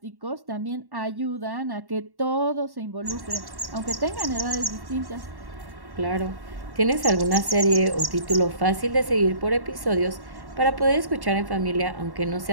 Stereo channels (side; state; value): left; late; 1.1 ms